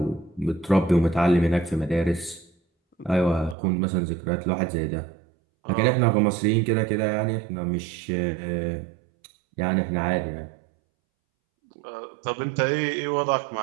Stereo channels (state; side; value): drops out; left; at 3.6 s